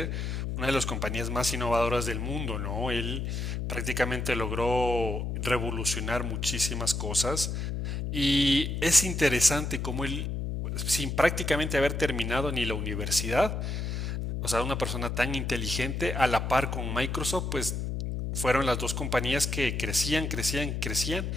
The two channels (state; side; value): noise; left; hum, 2 dB below the sound